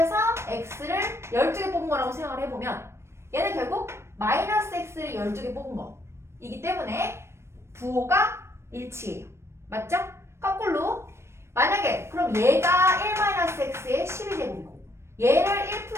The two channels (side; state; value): left; late; 0.13 ms